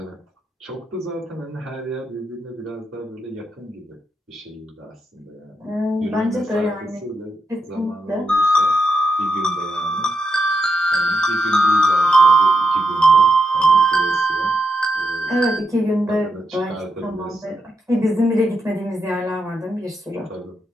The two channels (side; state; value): both; normal; correlation 0.83